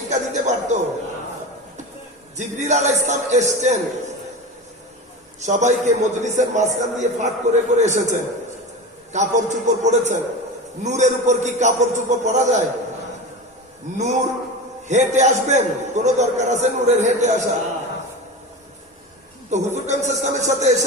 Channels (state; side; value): normal; both; correlation 0.27